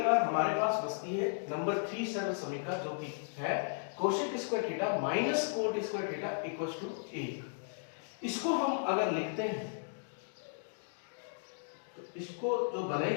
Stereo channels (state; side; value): silent; right; digital silence